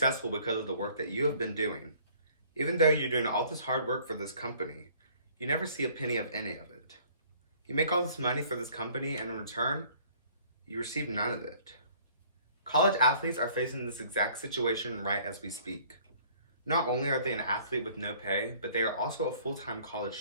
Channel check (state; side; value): inverted; both; correlation -0.56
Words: because of the work that you have been doing. Even though you're doing all this hard work for this company, you never see a penny of any of it. You make all this money for this company, and in return, you receive none of it. College athletes are facing this exact situation right as we speak. Not only are they an athlete with no pay, but they are also a full-time college